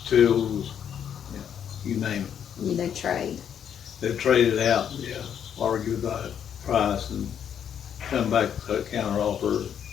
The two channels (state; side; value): quieter; right; 8.7 dB